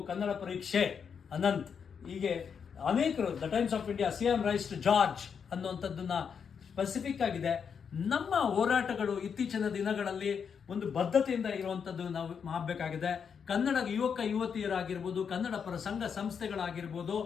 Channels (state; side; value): quieter; right; 6.8 dB